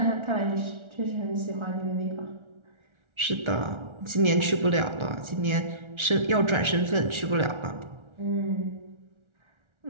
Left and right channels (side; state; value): left; late; 1.4 ms